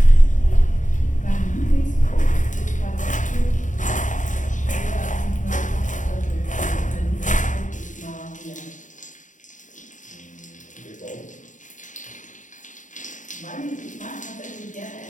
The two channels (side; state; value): right; late; 0.37 ms